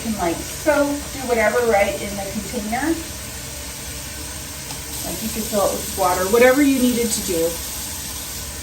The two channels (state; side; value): identical; both; correlation 1.00